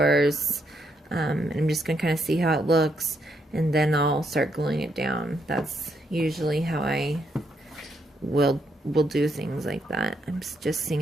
And I'm just going to kind of see how it looks. And then I'll start gluing it down. That's usually how I will do things like that. I'm just seeing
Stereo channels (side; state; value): both; normal; correlation 0.76